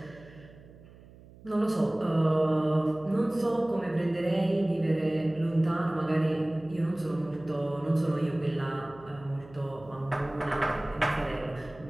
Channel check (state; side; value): noise; right; hum, 22 dB below the sound